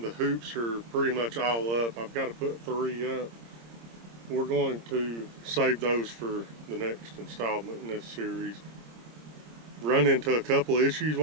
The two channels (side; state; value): left; late; 26 ms